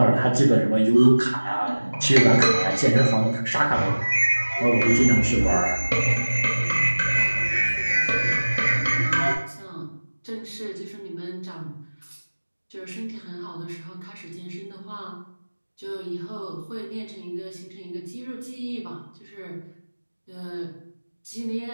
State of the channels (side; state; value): both; inverted; correlation -1.00